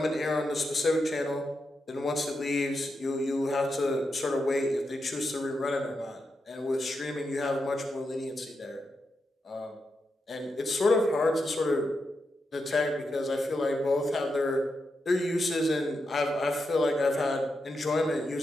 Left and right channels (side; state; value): both; normal; correlation 0.86